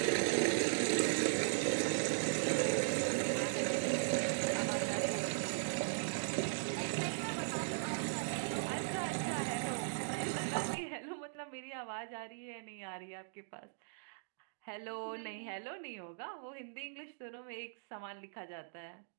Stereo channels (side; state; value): left; silent; digital silence